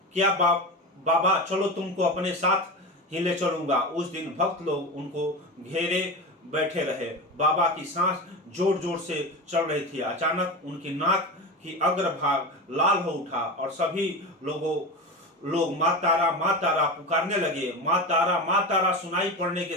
क्या बाबा चलो तुमको अपने साथ ही ले चलूंगा। उस दिन भक्त लोग उनको घेरे बैठे रहे। बाबा की सांस जोर जोर से चल रही थी। अचानक उनकी नाक की अग्रभाग लाल हो उठा और सभी लोग मां तारा पुकारने लगे। मां तारा सुनाई पड़ने के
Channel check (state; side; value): normal; both; correlation 0.24